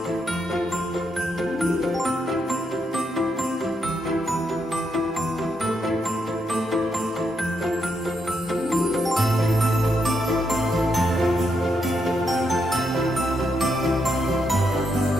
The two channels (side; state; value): both; normal; correlation 0.79